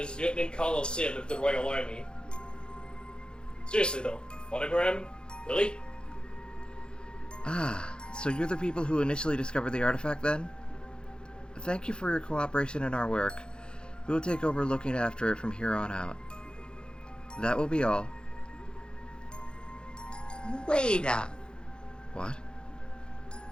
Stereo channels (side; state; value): right; late; 0.050 ms